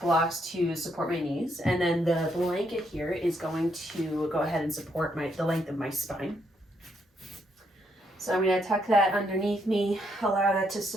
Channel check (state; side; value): normal; both; correlation 0.75